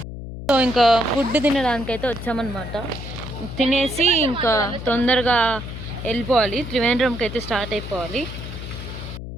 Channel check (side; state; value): left; noise; hum, 9 dB below the sound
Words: సో ఇంకా ఫుడ్ తినడానికి అయితే వచ్చామన్నమాట. తినేసి ఇంకా తొందరగా వెళ్ళిపోవాలి, త్రివేంద్రంకి అయితే స్టార్ట్ అయిపోవాలి.